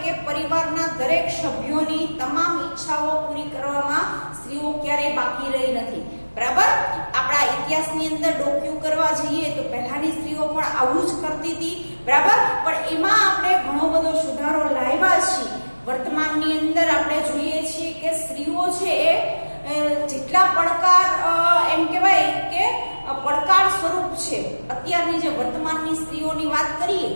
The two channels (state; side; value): inverted; both; correlation -1.00